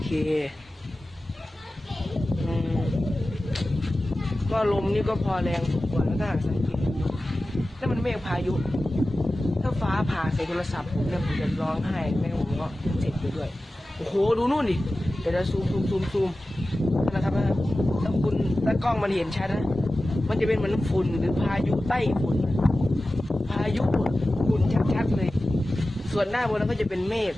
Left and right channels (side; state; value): both; normal; correlation 0.95